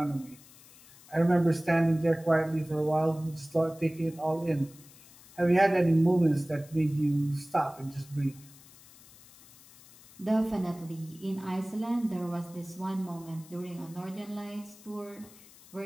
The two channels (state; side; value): noise; left; hiss, 23 dB below the sound